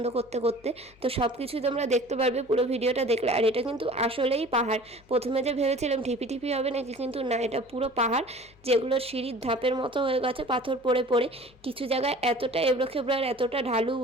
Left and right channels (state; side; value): noise; left; hum, 28 dB below the sound